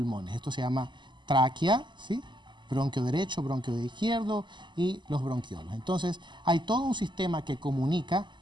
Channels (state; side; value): late; left; 0.22 ms